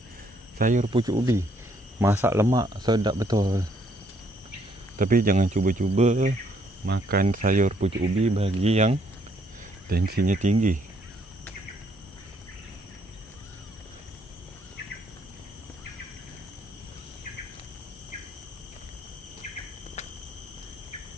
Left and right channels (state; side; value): normal; both; correlation 0.69